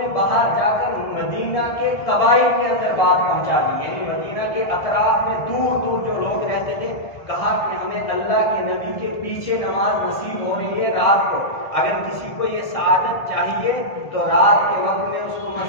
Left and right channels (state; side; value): late; right; 1.6 ms